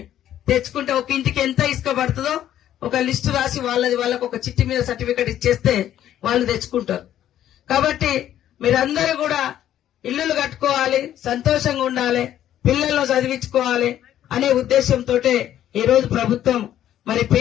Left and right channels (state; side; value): quieter; right; 11.6 dB